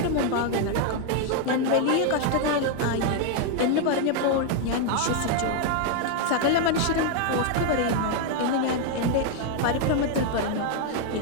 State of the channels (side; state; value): both; different; correlation 0.00